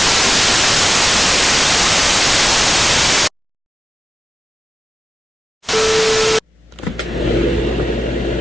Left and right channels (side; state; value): both; normal; correlation 0.95